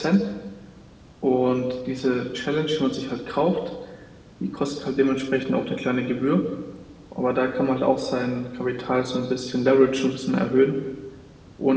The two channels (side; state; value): both; identical; correlation 1.00